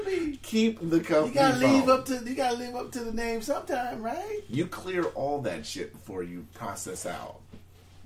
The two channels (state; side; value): identical; both; correlation 1.00